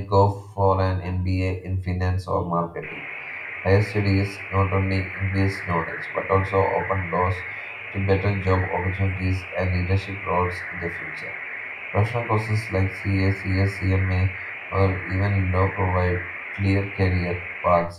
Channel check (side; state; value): both; identical; correlation 1.00